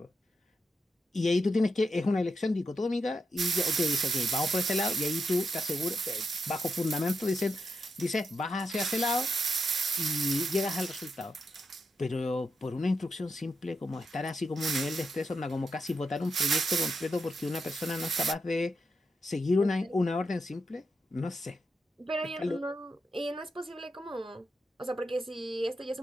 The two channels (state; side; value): normal; both; correlation 0.84